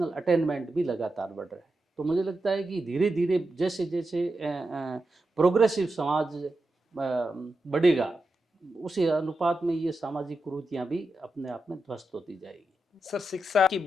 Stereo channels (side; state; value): both; normal; correlation 0.89